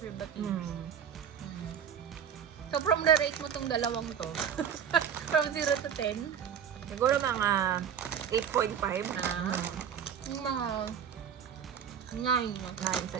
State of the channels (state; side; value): quieter; left; 8.3 dB